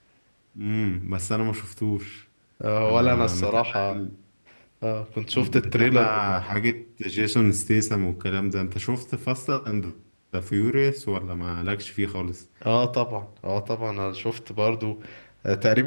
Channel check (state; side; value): inverted; both; correlation -1.00